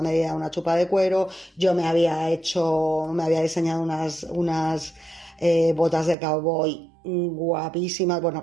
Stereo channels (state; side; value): drops out; left; at 6.2 s